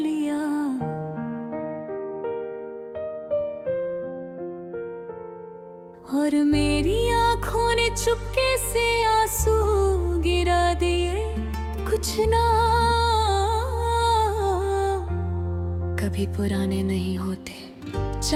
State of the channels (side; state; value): both; identical; correlation 1.00